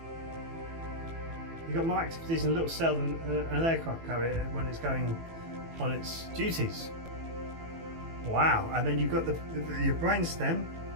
you've got more activities in a little cell than an aircraft carrier when it's going on its duties. Wow. And then you've got your brain stem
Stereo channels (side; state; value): left; late; 18 ms